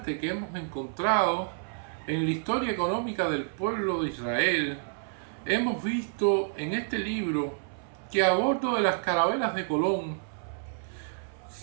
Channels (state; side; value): silent; left; 58 dB below the other